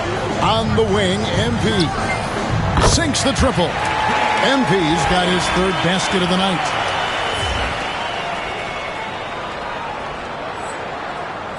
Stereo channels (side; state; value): both; identical; correlation 1.00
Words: on the wing. MP sinks the triple. MP's got his third basket of the night.